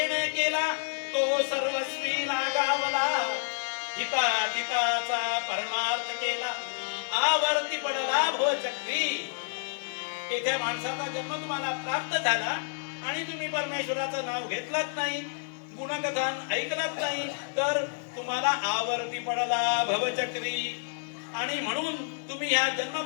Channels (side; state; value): right; silent; 56 dB below the other